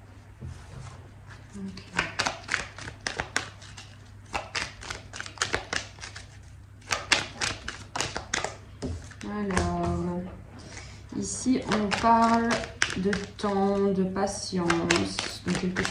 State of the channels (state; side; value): identical; both; correlation 1.00